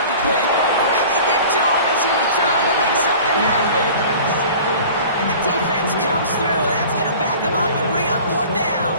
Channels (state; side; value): inverted; both; correlation -0.42